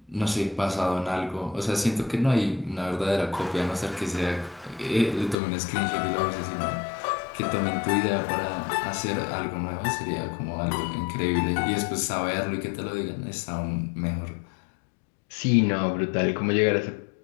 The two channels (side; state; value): right; drops out; at 5.4 s